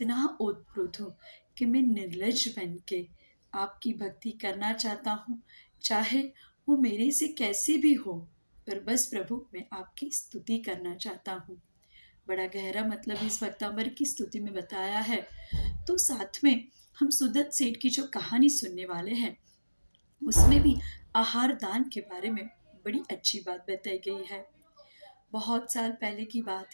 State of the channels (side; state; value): both; inverted; correlation -1.00